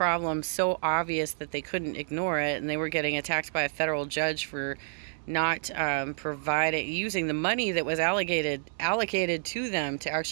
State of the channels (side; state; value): left; silent; digital silence